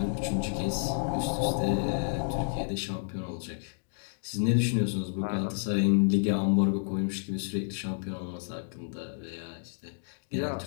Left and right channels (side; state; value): right; silent; digital silence